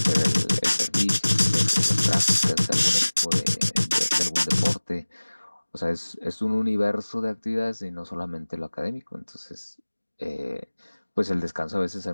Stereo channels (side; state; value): both; inverted; correlation -1.00